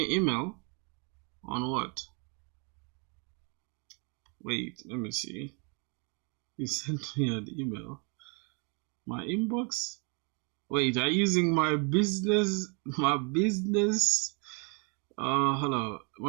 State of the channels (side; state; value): left; quieter; 35.3 dB